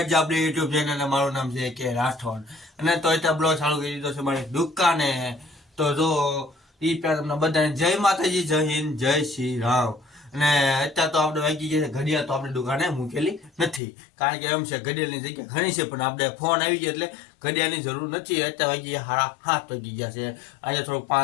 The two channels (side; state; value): right; drops out; at 13.8 s